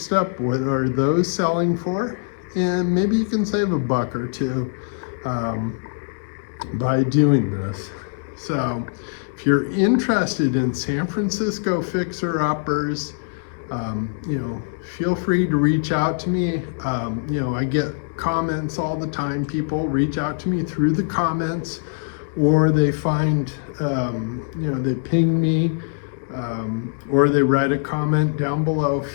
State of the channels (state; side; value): silent; right; digital silence